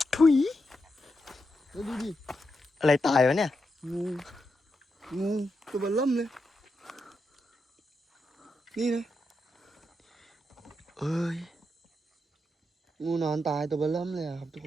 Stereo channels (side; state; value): both; normal; correlation 0.85